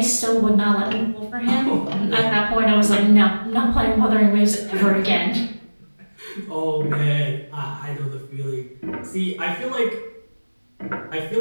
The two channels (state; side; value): inverted; both; correlation -1.00